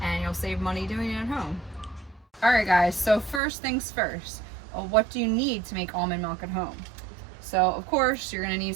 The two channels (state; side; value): drops out; left; at 3.4 s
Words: and you'll save money doing it at home. Alright guys, so first things first, what do you need to make almond milk at home? So of course you're going to need